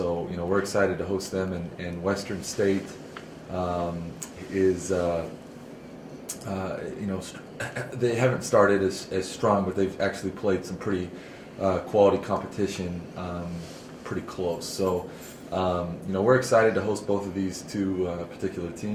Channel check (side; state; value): both; identical; correlation 1.00